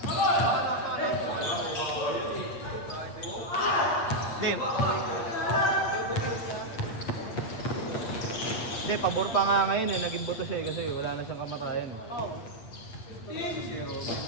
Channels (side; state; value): right; late; 8.6 ms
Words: Hindi. Hindi, pabor pa nga ngayon eh. Naging buto siya eh kasi wala na siyang kamatayan eh.